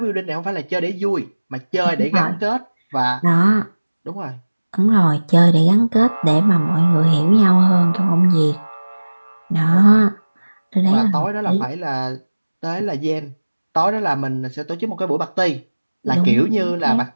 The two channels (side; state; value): both; inverted; correlation -1.00